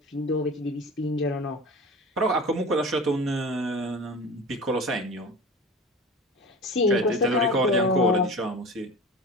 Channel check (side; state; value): both; normal; correlation 0.34